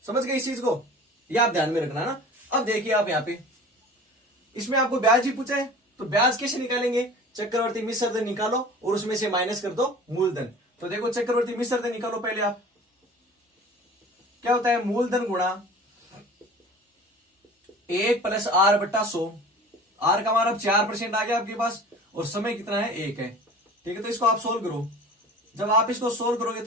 समझ गए इस चीज को, यह आप ध्यान में रखना ना। अब देखिए आप यहाँ पे इसमें आपको ब्याज ही पूछा है, तो ब्याज कैसे निकालेंगे, चक्रवर्ती मिश्र धन निकालो और उसमें से माइनस कर दो मूलधन। तो देखो चक्रवर्ती मिश्र धन निकालो पहले आप, क्या होता है, मूलधन गुणा 1 + r/100। आर का मान अब 4% आ गया आपके पास और समय कितना है, 1 है। ठीक है, तो इसको आप सोल्व करो। जब आप इसको सोल्व करोगे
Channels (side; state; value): both; normal; correlation 0.42